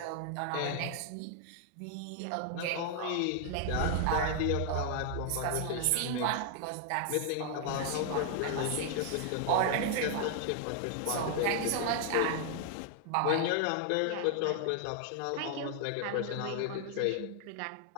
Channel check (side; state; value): both; different; correlation 0.00